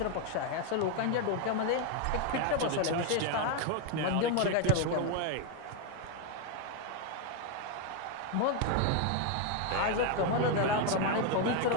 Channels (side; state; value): both; different; correlation 0.01